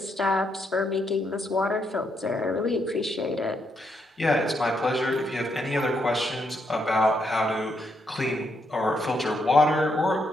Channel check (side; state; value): both; normal; correlation 0.78